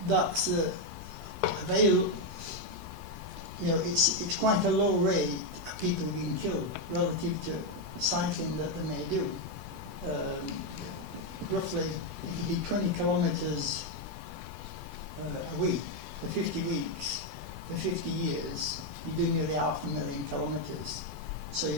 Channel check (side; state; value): left; noise; rumble, 15 dB below the sound